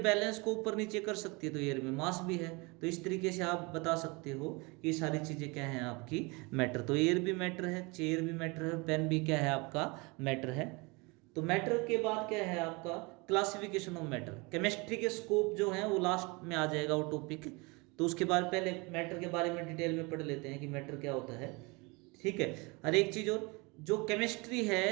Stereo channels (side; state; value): left; quieter; 27.2 dB